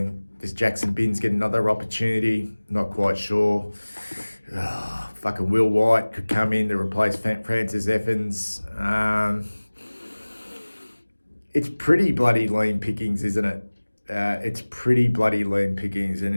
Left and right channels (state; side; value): inverted; both; correlation -1.00